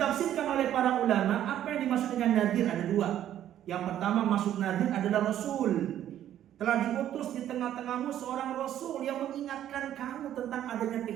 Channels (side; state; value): left; quieter; 11.4 dB